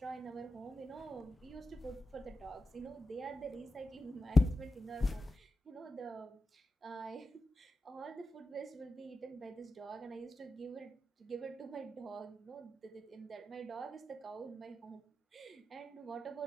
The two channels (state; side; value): normal; both; correlation 0.90